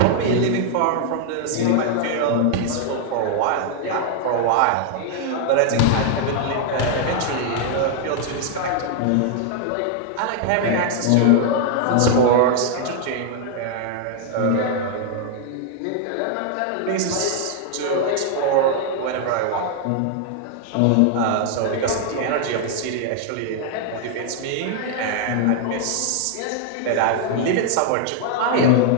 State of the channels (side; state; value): both; different; correlation 0.00